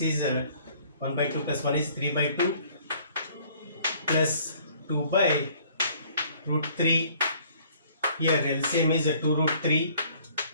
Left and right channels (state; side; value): inverted; both; correlation -0.58